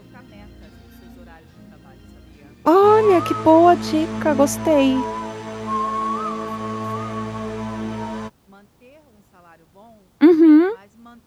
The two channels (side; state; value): both; identical; correlation 1.00